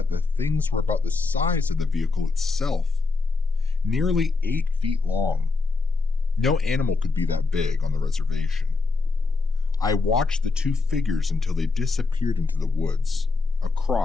the things were about the size of the vehicle itself, nearly 8 feet long. No animal could be that big on the reservation. I watched the 2 figures until they disappeared into the woods,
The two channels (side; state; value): right; quieter; 3.9 dB